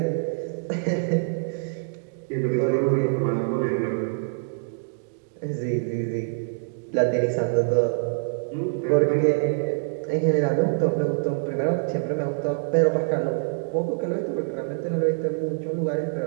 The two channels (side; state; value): left; silent; digital silence